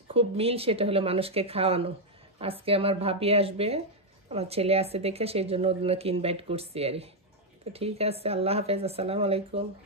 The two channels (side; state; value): both; normal; correlation 0.01